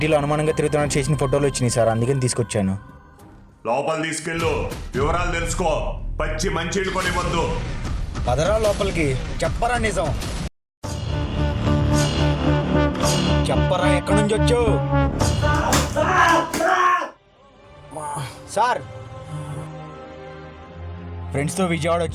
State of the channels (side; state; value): both; identical; correlation 1.00